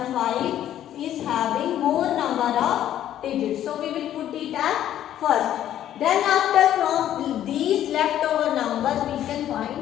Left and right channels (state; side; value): quieter; right; 11.6 dB